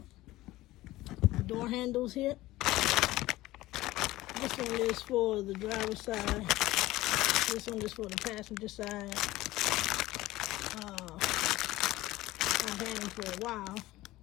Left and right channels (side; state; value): right; quieter; 17.4 dB